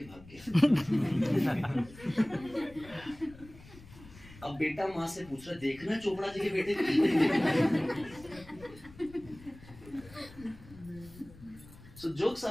भाग गया। अब बेटा माँ से पूछ रहा, देखना चोपड़ा जी के बेटे को। सो जोक्स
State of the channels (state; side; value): noise; left; rumble, 20 dB below the sound